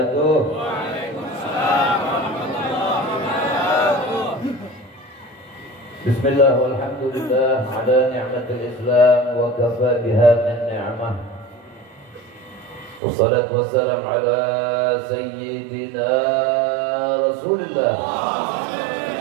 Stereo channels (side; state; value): left; drops out; at 13.0 s